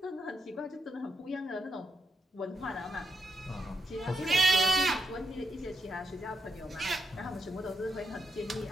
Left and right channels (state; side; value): normal; both; correlation 0.81